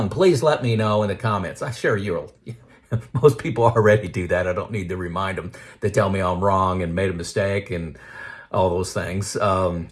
please let me know in the comments. I'm sure you'll. Most people already do that. I don't need to remind them. They tell me I'm wrong and made a mistake and all those things.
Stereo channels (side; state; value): both; identical; correlation 1.00